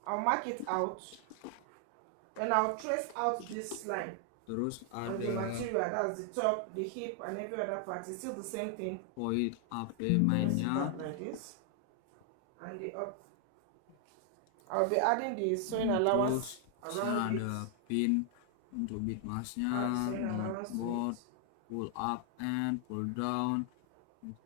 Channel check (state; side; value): different; both; correlation 0.00